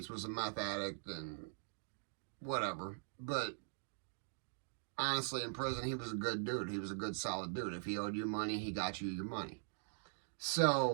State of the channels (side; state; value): left; silent; digital silence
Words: was a meth addict and whatever. But honestly, in prison, he was a good dude. He was a good, solid dude. If he owed you money, he got you your money.